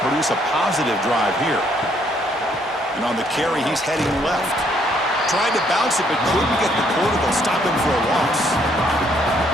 produce a positive drive here. And on the carry, he's heading left. Tried to bounce it, but couldn't get the quarter. They'll stop him for a loss.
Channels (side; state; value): both; normal; correlation 0.68